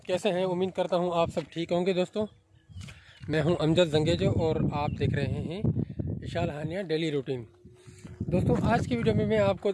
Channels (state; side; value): identical; both; correlation 1.00